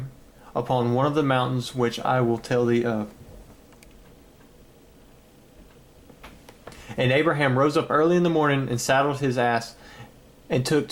upon one of the mountains which I will tell thee of. And Abraham rose up early in the morning, and saddled his ass, and took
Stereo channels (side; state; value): both; identical; correlation 1.00